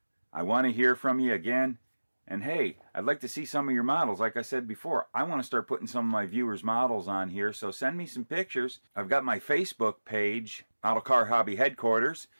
I want to hear from you again. And hey, I'd like to see some of your models. Like I said before, I want to start putting some of my viewers' models on here, so send me some pictures. I've got my Facebook page, Model Car Hobby Headquarters,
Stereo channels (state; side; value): inverted; both; correlation -1.00